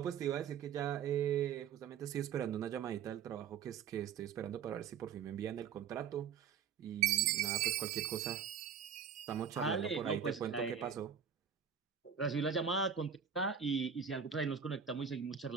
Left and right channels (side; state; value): left; quieter; 7.4 dB